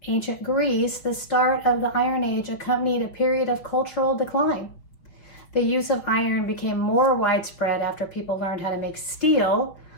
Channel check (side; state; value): right; late; 5.9 ms